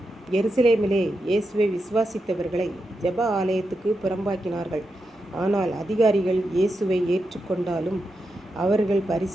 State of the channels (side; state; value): both; normal; correlation 0.87